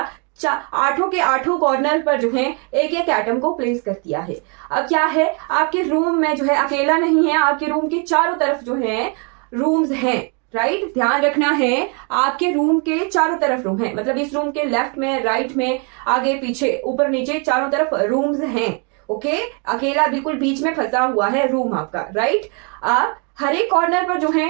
8 के 8 कॉर्नर पर जो है एक एक एटम को प्लेस कर दिया है। अब क्या है, आपके रूम में जो है अकेला नहीं है, आपके रूम के चारों तरफ जो है रूम्स हैं, राइट। ध्यान रखना है, आपके रूम के चारों तरफ रूम है, मतलब इस रूम के लेफ्ट में, राइट में, आगे पीछे, ऊपर नीचे, चारों तरफ रूम्स हैं, ओके। अकेला बिल्कुल बीच में फंसा हुआ है रूम आपका, राइट। अब हर एक कॉर्नर पर जो है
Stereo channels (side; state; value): left; quieter; 36.3 dB